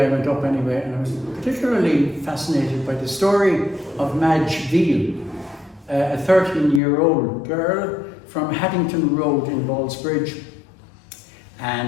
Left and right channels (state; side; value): drops out; right; at 6.8 s